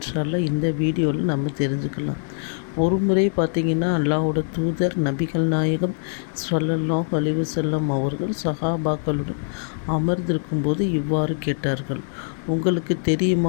அல்லாஹ் இந்த வீடியோவில் நம்ம தெரிஞ்சுக்கலாம். ஒரு முறை பார்த்திங்கன்னா அல்லாஹ்வோட தூதர் நபிகள் நாயகம் ஸல்லல்லாஹு அலைஹி வஸல்லம் அவர்கள் சஹாபாக்களுடன் அமர்ந்திருக்கும்போது இவ்வாறு கேட்டார்கள், உங்களுக்கு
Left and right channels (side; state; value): right; silent; digital silence